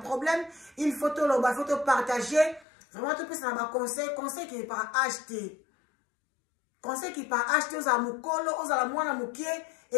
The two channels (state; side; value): drops out; right; at 2.7 s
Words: il faut to loba, faut to partager. Vraiment tout peut na ba conseil qui est pas acheter. Conseil qui pas acheter aux amukolo, aux ala mwana mukie